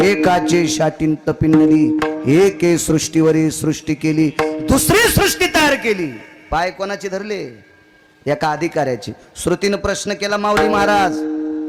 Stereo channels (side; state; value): both; identical; correlation 1.00